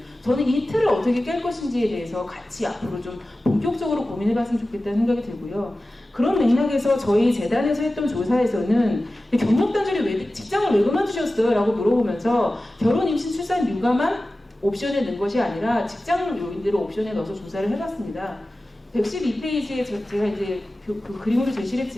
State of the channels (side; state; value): both; normal; correlation 0.96